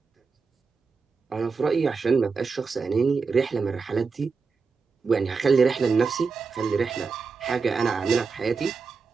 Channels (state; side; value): quieter; left; 4.8 dB